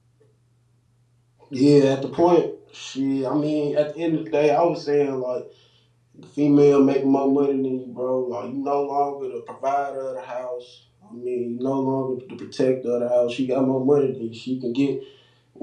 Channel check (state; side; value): identical; both; correlation 1.00